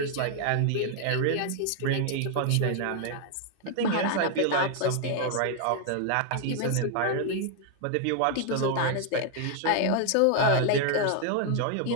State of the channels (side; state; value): both; different; correlation 0.00